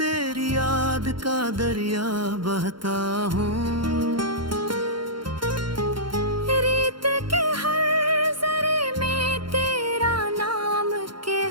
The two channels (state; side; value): late; left; 0.73 ms